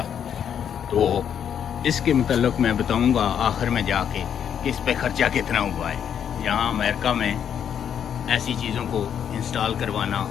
तो इसके मतलब मैं बताऊंगा आखिर में जाके कि इस पे ख़र्चा कितना हुआ है। यहाँ अमेरिका में ऐसी चीज़ों को इंस्टॉल करवाना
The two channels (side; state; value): right; quieter; 8.6 dB